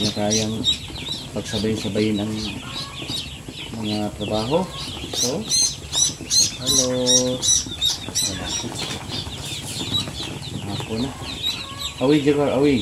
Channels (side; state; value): both; identical; correlation 1.00